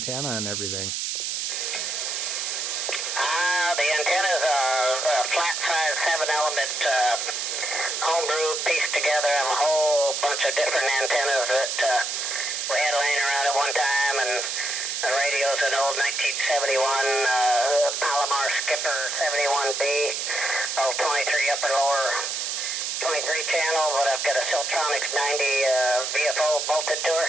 and everything? The antenna's a flat-size 7-element homebrew pieced together. I have a whole bunch of different antennas that we had laying around at one time, and the radio's an old 1971 Palomar Skipper 71B, old 23 upper lower 23 channel, but I've got a Siltronics 90 VFO bolted to her.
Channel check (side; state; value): right; noise; hiss, 2 dB below the sound